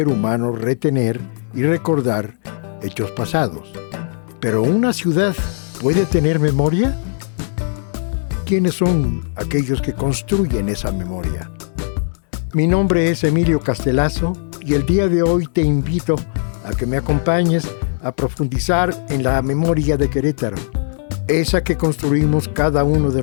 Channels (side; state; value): right; silent; digital silence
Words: humano retener y recordar hechos pasados. ¿Pero una ciudad puede tener memoria? ¿Quiénes son aquellos que construyen esa memoria? Mi nombre es Emilio Castelazo y el día de hoy te invito a que me acompañes a profundizar en la memoria de Querétaro, esa que construimos cada uno de